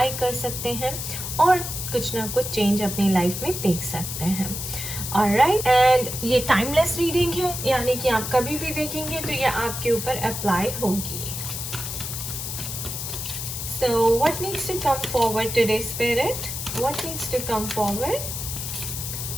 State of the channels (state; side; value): noise; left; hiss, 5 dB below the sound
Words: कर सकते हैं और कुछ ना कुछ चेंज अपनी लाइफ में देख सकते हैं। ऑलराइट, एंड ये टाइमलेस रीडिंग है, यानी कि आप कभी भी देखेंगे तो ये आपके ऊपर अप्लाई होगी। So what needs to come forward today, Spirit? What needs to come forward?